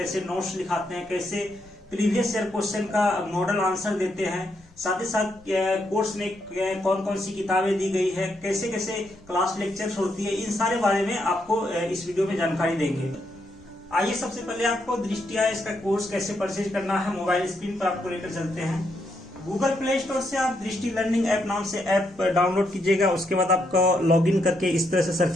नोट्स लिखाते हैं, कैसे प्रीवियस ईयर क्वेश्चन का मॉडल आंसर देते हैं, साथ ही साथ कोर्स में कौन कौन सी किताबें दी गई है, कैसे कैसे क्लास लेक्चर्स होती है, इन सारे बारे में आपको इस वीडियो में जानकारी देंगे। आइए सबसे पहले आपको दृष्टि आईएएस का कोर्स कैसे परचेज करना है मोबाइल स्क्रीन पर आपको लेकर चलते हैं। गूगल प्ले स्टोर से आप दृष्टि लर्निंग ऐप नाम से ऐप डाउनलोड कीजिएगा। उसके बाद आपको लॉगिन करके इस तरह से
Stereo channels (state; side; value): noise; left; rumble, 27 dB below the sound